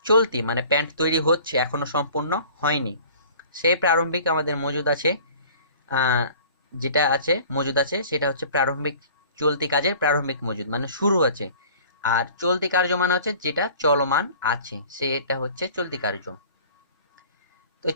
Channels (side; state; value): both; inverted; correlation -0.48